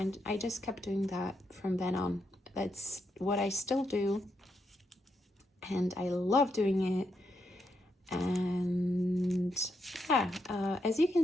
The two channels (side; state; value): both; normal; correlation 0.81